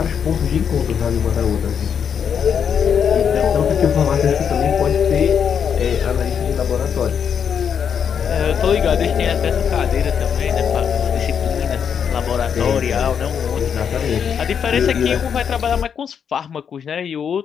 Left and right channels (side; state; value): right; quieter; 7.5 dB